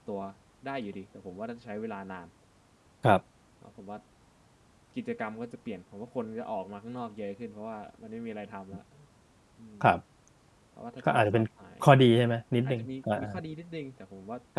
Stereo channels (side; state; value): both; identical; correlation 1.00